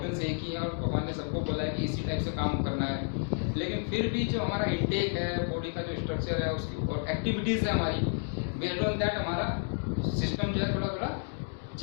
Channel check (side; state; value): right; silent; 57 dB below the other